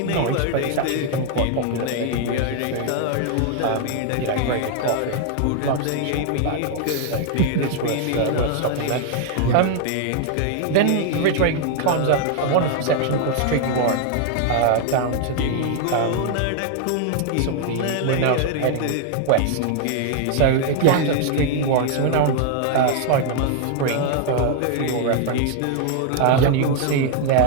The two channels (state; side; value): different; both; correlation 0.00